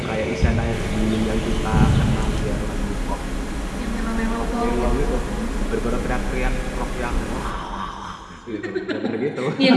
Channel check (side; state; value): both; identical; correlation 1.00